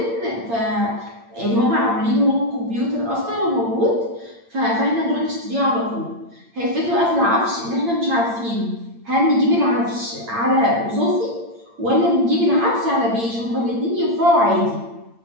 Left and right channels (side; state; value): left; late; 8.8 ms